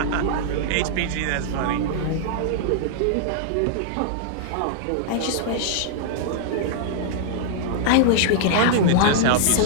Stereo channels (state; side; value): different; both; correlation -0.01